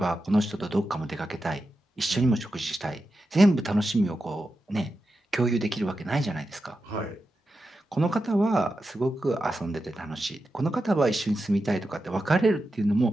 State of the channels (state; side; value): normal; both; correlation 0.90